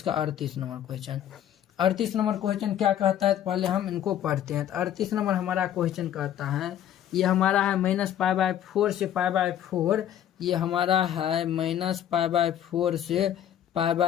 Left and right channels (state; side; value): quieter; right; 10.6 dB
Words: 38 नंबर क्वेश्चन। 38 नंबर क्वेश्चन क्या कहता है, तो पहले हम इनको पढ़ते हैं। तो 38 नंबर हमारा क्वेश्चन कहता है, ये हमारा है -π/4 से π/4, ये हमारा है -π/4 से